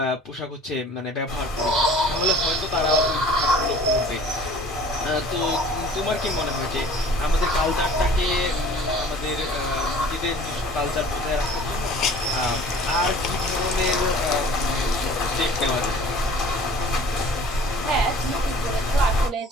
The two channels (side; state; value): both; normal; correlation 0.47